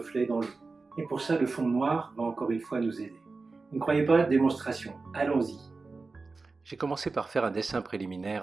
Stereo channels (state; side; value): quieter; left; 3.9 dB